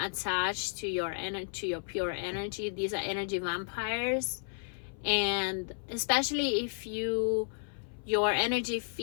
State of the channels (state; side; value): silent; right; 56 dB below the other